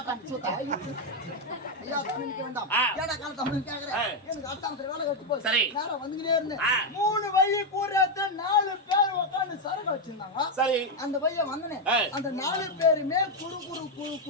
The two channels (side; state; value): both; normal; correlation 0.03